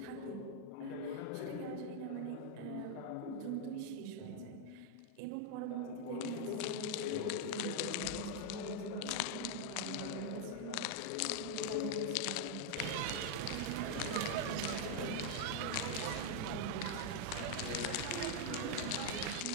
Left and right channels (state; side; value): different; both; correlation 0.00